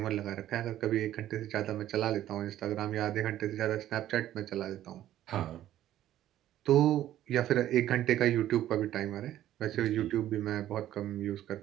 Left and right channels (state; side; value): quieter; left; 12.7 dB